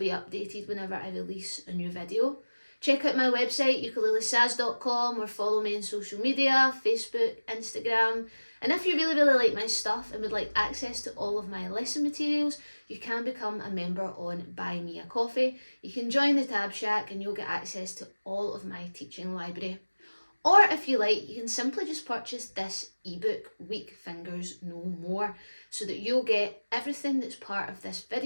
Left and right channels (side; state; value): both; inverted; correlation -1.00